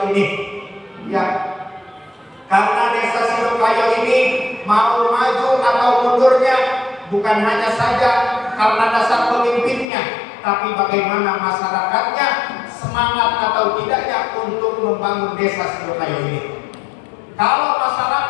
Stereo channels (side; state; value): right; drops out; at 9.9 s